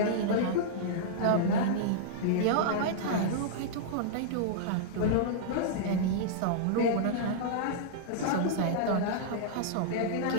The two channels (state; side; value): different; both; correlation -0.02